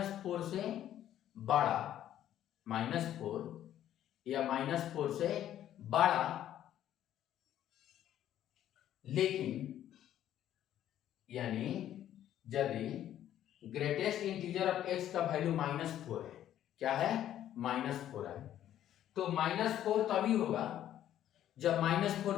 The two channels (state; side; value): quieter; right; 11.6 dB